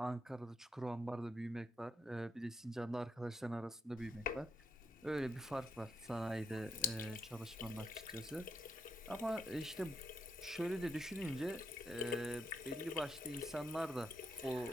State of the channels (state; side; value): normal; both; correlation 0.80